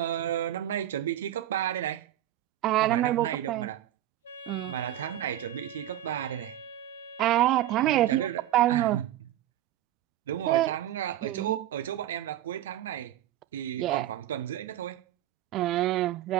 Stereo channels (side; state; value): left; quieter; 12.9 dB